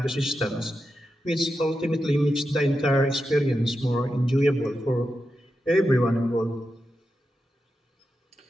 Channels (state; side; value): normal; both; correlation 0.89